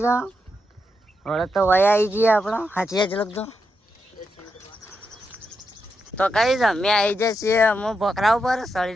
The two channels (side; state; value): both; normal; correlation 0.84